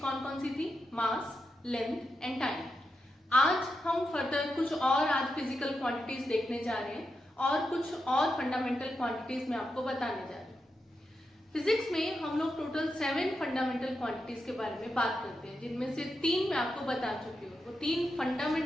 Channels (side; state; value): both; normal; correlation 0.87